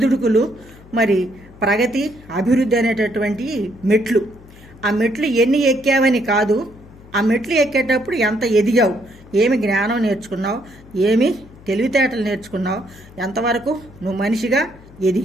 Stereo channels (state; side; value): noise; left; hum, 22 dB below the sound